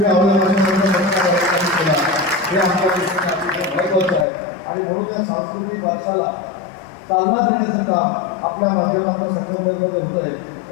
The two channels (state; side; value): drops out; right; at 4.2 s